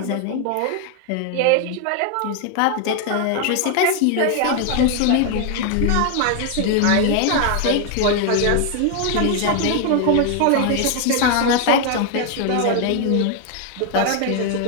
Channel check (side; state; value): both; different; correlation 0.00